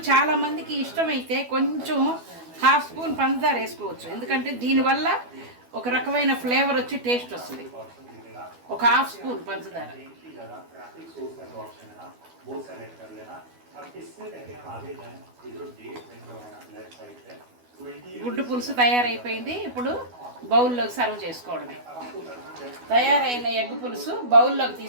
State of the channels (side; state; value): left; late; 12 ms